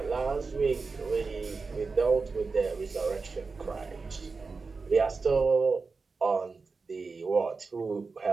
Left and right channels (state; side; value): quieter; left; 4.3 dB